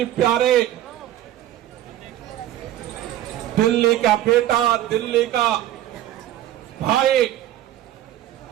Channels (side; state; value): left; quieter; 13.0 dB